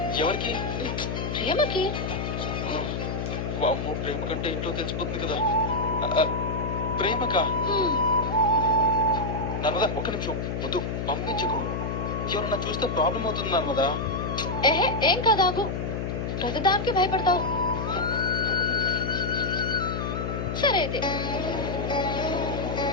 ఎవరికి? ప్రేమకి. వామ్మో, ప్రేమ కంటే ఇంట్లో తెలిసిపోతుంది కదా. ప్రేమకా? నర్మదా ఒక్క నిమిషం, వద్దు పంపించుకో. ఎవరన్నా చూస్తే ప్రాబ్లం అవుతుంది నర్మదా. ఏహే ఏం కాదాగు, ప్రతిదానికి భయపడతావు. సరే అయితే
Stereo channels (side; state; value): left; noise; hum, 2 dB below the sound